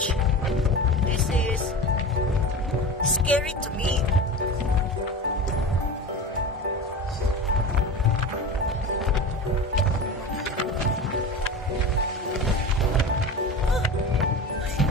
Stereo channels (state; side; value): normal; both; correlation 0.30